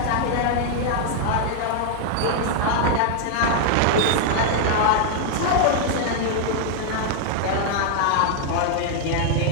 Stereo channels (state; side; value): different; both; correlation 0.00